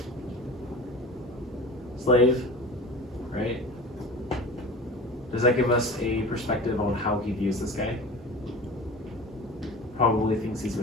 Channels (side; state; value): both; normal; correlation 0.36